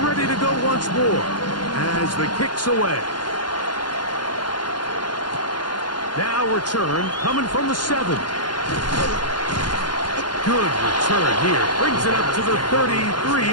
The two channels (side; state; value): right; late; 0.71 ms